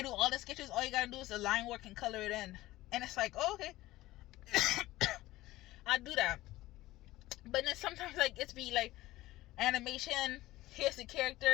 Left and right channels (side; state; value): right; quieter; 17.2 dB